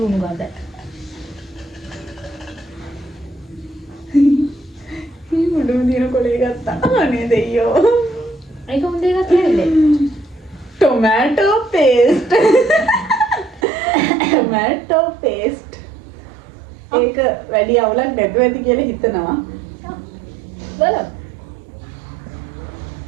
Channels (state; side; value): drops out; left; at 13.7 s